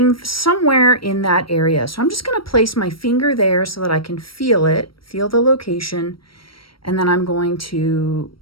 somewhere in that area. So I'm just going to place my finger there so that I can feel it, feel the location. And then I'm going to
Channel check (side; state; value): right; late; 0.74 ms